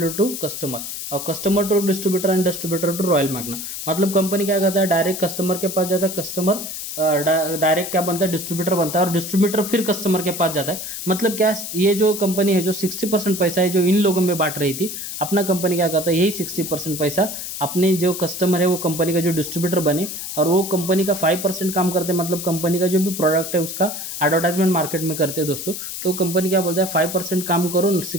to customer, और customer to distributor and distributor to royal magnum. मतलब कंपनी क्या करता है, डायरेक्ट कस्टमर के पास जाता है, कस्टमर डायरेक्ट क्या बनता है, डिस्ट्रीब्यूटर बनता है, और डिस्ट्रीब्यूटर फिर कस्टमर के पास जाता है। मतलब क्या, ये जो कंपनी है जो 60% पैसा है जो इन लोगों में बांट रही थी, अपना कंपनी क्या करता है, यही 60% पैसा अपने जो कस्टमर है वो कंपनी का जो डिस्ट्रीब्यूटर बने, और वो कंपनी का 5% काम करते हैं। मतलब कंपनी का जो भी प्रोडक्ट है उसका एडवर्टाइजमेंट मार्केट में करते हैं दोस्तों। तो कंपनी क्या बोलता है 5% काम करो,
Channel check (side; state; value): left; noise; hiss, 7 dB below the sound